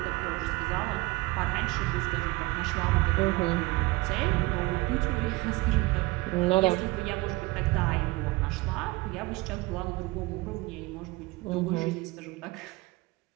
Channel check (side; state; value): left; quieter; 22.2 dB